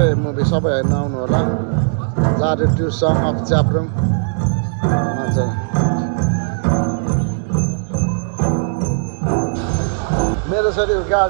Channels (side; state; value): left; silent; digital silence